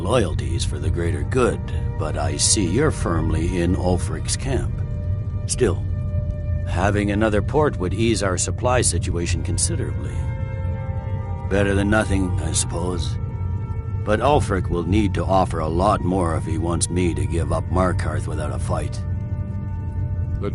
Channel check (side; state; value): both; identical; correlation 1.00